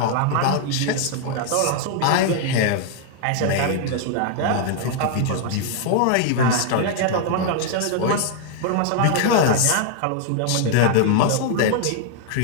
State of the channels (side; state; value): both; different; correlation 0.00